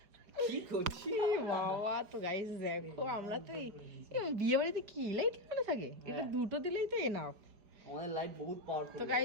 কি করছি বাবা। তো গাইস দেখো আমরা তো এই বিয়ে বাড়িতে কি লাইট লাগানো থাকে, এটা দুটো দিলেই তো এনাফ। আমাদের লাইট বহুত পাওয়ারফুল। তো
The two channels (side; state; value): left; late; 4.8 ms